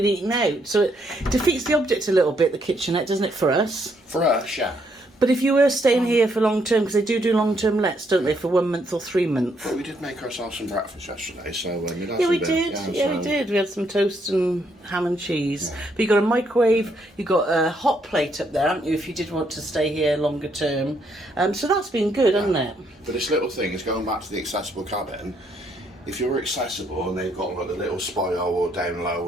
eating out. So it defeats the object a little bit, the kitchenette, doesn't it, for us? For us, yeah. But if you were staying here for long term, because they do long term lets, don't they, for 1 month or 3 months? Well, we did make ourselves some breakfast yesterday, so we did. We had some toast and ham and cheese. Yeah. But you got a microwave, you got a hot plate up there, haven't you? If you did want to stay here longer term, so that's been good, hasn't it? But this little thing is going back to the accessible cabin. If you're accessible and they've got like the little spiral down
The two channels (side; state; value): both; normal; correlation 0.73